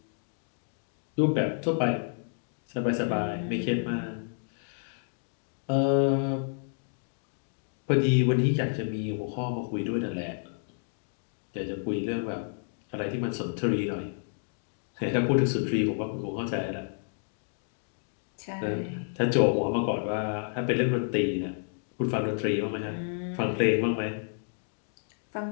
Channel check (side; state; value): right; silent; digital silence